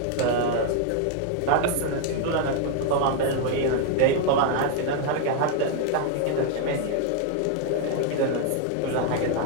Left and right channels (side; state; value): both; different; correlation 0.00